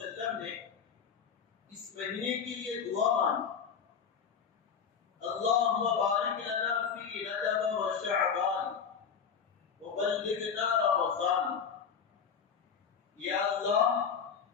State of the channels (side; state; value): right; quieter; 6.8 dB